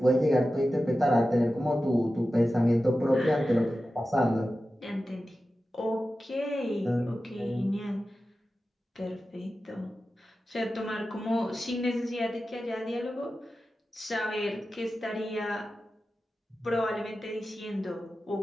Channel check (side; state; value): both; normal; correlation 0.93